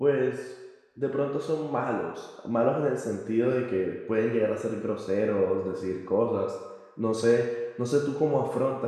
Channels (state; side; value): identical; both; correlation 1.00